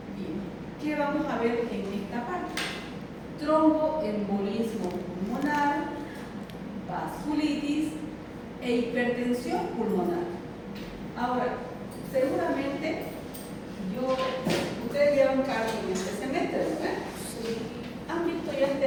Bien, ¿qué vamos a ver en esta parte? Tromboembolismo pulmonar, vasculitis e hipertensión pulmonar. Ahora, seguramente ustedes llevan cargo en este semestre, ¿verdad? Sí. ¿Han visto ya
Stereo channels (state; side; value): identical; both; correlation 1.00